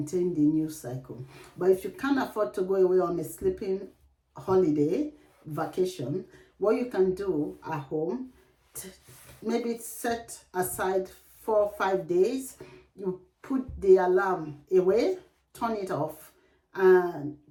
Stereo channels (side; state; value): both; identical; correlation 1.00